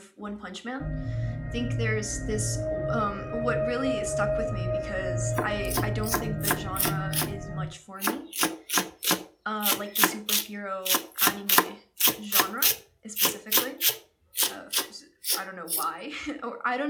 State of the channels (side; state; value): both; identical; correlation 1.00